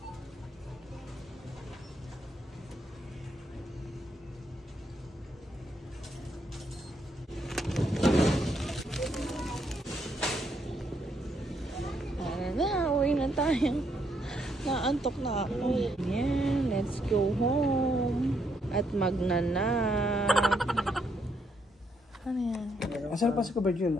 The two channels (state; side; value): normal; both; correlation 0.75